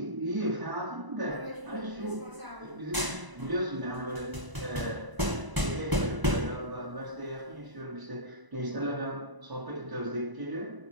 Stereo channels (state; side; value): late; left; 1.0 ms